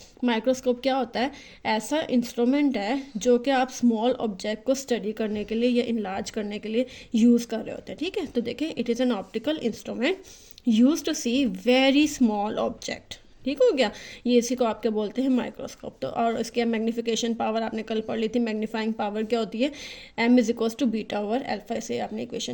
माइक्रोस्कोप क्या होता है? ऐसा इंस्ट्रूमेंट है जो कि आप स्मॉल ऑब्जेक्ट को स्टडी करने के लिए या इनलार्ज करने के लिए यूज़ कर रहे होते हैं, ठीक है। तो देखें, it is an optical instrument use to see very small object, ठीक हो गया। ये इसी को आप क्या बोलते हैं? माइक्रोस्कोप। तो और इसके मैग्नीफिकेशन पावर आपने कल पढ़ ली थी। मैग्नीफाइंग पावर क्या होती है? m is equals to beta over alpha. से आपने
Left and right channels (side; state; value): both; identical; correlation 1.00